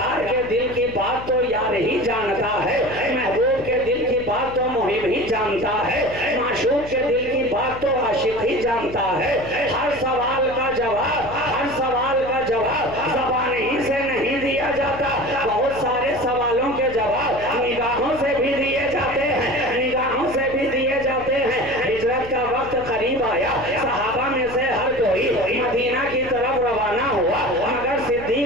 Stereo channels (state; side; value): noise; left; hum, 14 dB below the sound